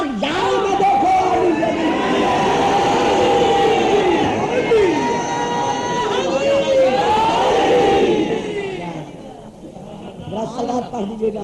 یاروں میں دیکھو۔ صلوات پڑھ دیجیے گا،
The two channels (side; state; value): both; identical; correlation 1.00